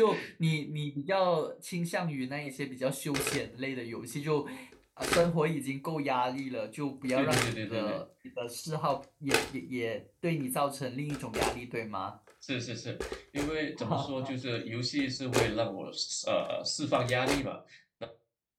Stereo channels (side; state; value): both; identical; correlation 1.00